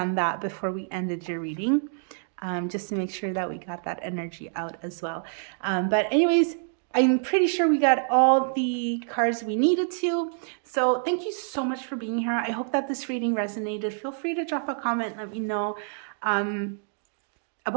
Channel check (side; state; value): left; silent; digital silence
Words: that before we ended your reading, just to make sure that we got that energy out as well. But anyways, I'm pretty sure we got all the cards we needed to. So thank you so much for being here. I hope that this reading resonated. Feel free to drop a comment. Let me know